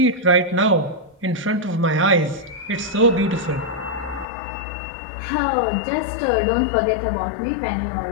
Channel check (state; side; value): drops out; right; at 4.2 s